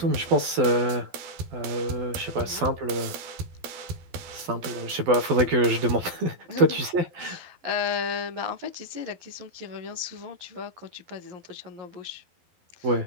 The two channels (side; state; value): left; late; 12 ms